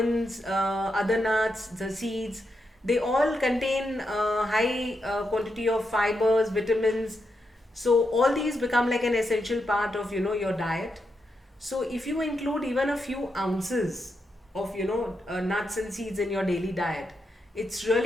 other nuts, the seeds, they all contain high quantity of fibers, vitamins. So all these become like an essential part of your diet. So if you include even a few ounces of nuts and seeds in your daily diet, it's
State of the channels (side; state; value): both; normal; correlation 0.84